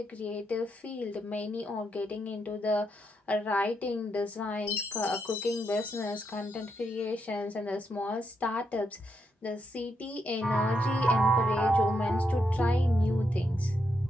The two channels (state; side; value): normal; both; correlation 0.81